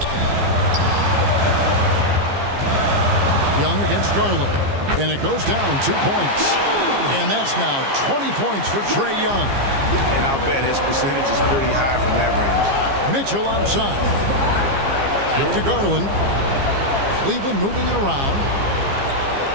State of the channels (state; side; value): late; left; 15 ms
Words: Young against Garland. And it goes down 2 points. And that's now 20 points for Trae Young. And I'll bet his percentage is pretty high from that range. Mitchell outside. Back to Garland. Cleveland moving it around.